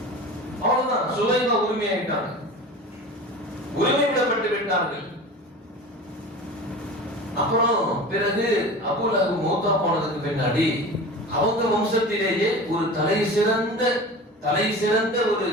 அவ்வளவுதான், சுலைமா உரிமையாயிட்டாங்க, உரிமை விடப்பட்டு விட்டார்கள். அப்புறம் பிறகு அபூலஹப் மௌத்தா போனதுக்கு பின்னாடி அவங்க வம்சத்திலேயே ஒரு தலை சிறந்த ஒரு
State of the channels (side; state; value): both; normal; correlation 0.34